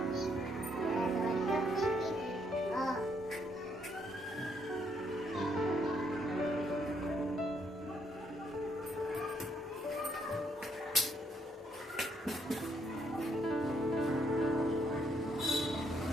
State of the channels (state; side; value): normal; both; correlation 0.72